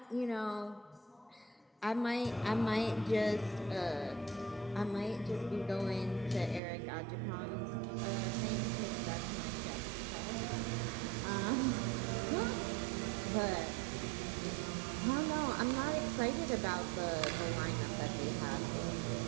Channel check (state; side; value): drops out; left; at 6.6 s